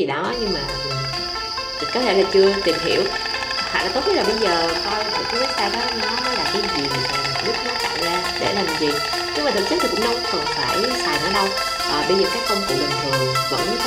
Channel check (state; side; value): identical; both; correlation 1.00